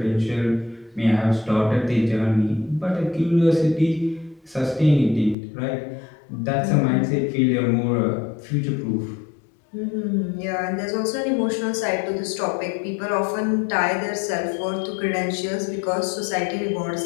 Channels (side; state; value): right; drops out; at 5.4 s